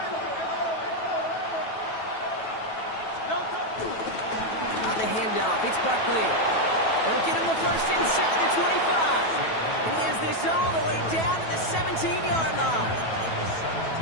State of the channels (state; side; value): late; right; 9.2 ms